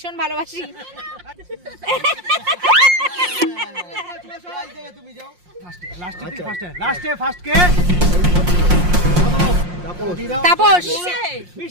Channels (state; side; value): late; left; 5.6 ms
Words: ভালোবাসি। লাস্টে ফার্স্ট কে? তাপস।